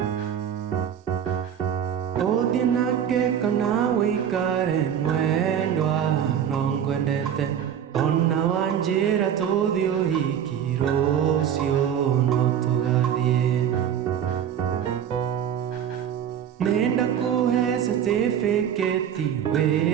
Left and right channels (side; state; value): left; quieter; 9.1 dB